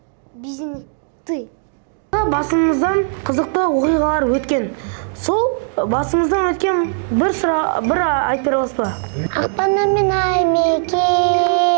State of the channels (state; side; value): silent; left; digital silence